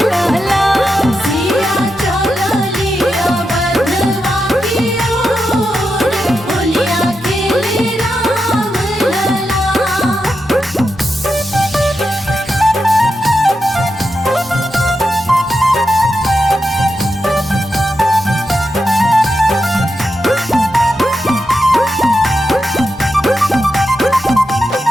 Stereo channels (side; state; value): both; normal; correlation 0.87